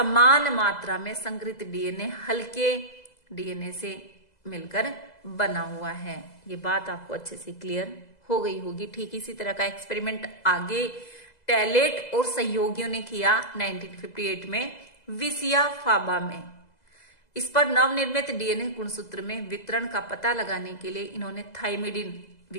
मात्रा में संकरित डीएनए हल्के डीएनए से मिलकर बना हुआ है। ये बात आपको अच्छे से क्लियर हो गई होगी। ठीक इसी तरह का एक्सपेरिमेंट आगे टैलेट और सहयोगियों ने किया 1958 में विसिया फाबा में। इस पर नवनिर्मित डीएनए गुणसूत्र में वितरण का पता लगाने के लिए इन्होंने थाइमिडिन,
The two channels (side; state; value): right; late; 2.0 ms